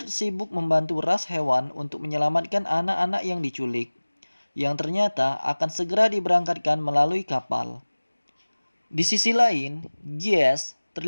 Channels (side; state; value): both; inverted; correlation -1.00